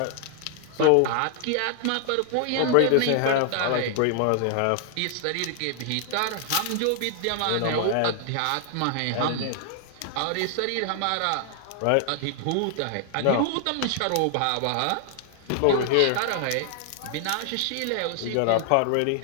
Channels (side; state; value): both; different; correlation 0.00